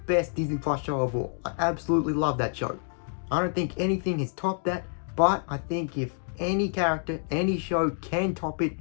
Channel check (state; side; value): silent; right; 59 dB below the other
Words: Disney Plus show of all. I absolutely love that show. I don't think anything has topped that, but I think if any character, any show can top it,